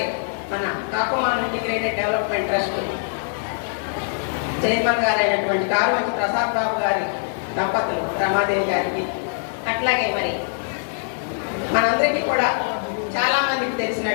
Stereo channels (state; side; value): silent; right; 64 dB below the other